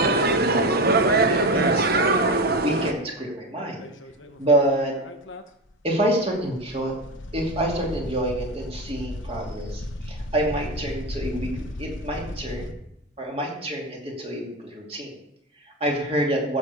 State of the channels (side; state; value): both; normal; correlation 0.20